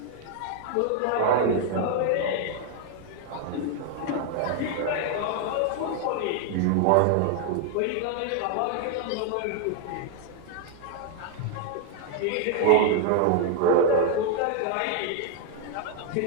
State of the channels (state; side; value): different; both; correlation 0.00